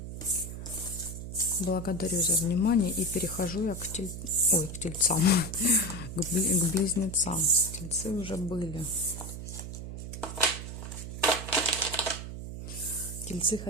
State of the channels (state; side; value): noise; right; hum, 8 dB below the sound